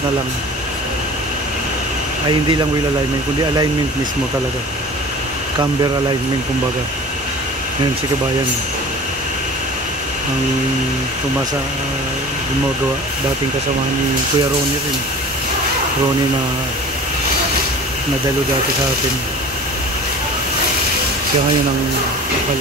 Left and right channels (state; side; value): normal; both; correlation 0.40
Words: na lang. Ay hindi lang wheel alignment, kundi alignment mismo talaga, camber alignment kumbaga. Ngayon si kabayan ang tumasa, gumagawa, dating kasamahan ni Kuya Ronnie rin, Ronnie na nadalo dati sa atin. Siya ngayon ang